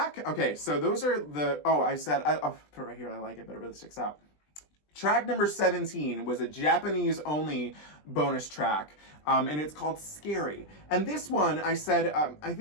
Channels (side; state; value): right; late; 20 ms